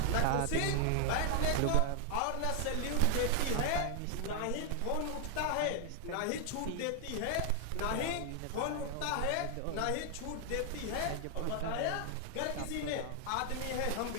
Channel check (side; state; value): both; different; correlation 0.00